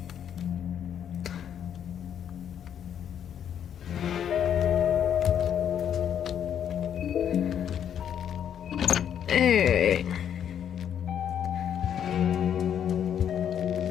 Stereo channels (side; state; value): right; quieter; 9.1 dB